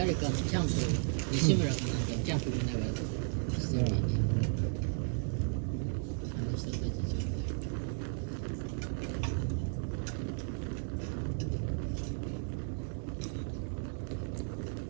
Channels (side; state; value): left; silent; 55 dB below the other